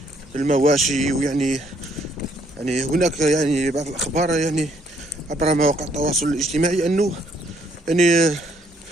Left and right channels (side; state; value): both; normal; correlation 0.68